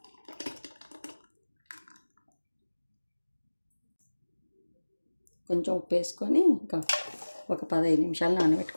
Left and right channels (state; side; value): inverted; both; correlation -1.00